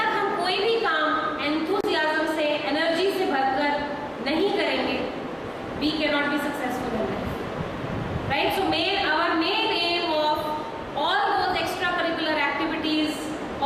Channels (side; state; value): both; identical; correlation 1.00